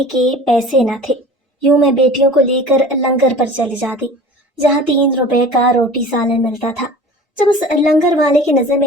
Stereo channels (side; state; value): both; normal; correlation 0.40